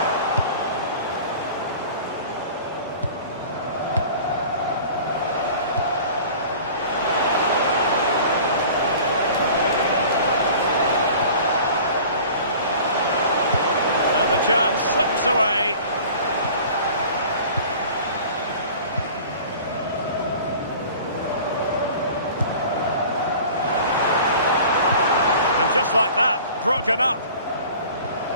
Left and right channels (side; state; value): both; inverted; correlation -0.44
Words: And the chance slips away. Just like that, broken up.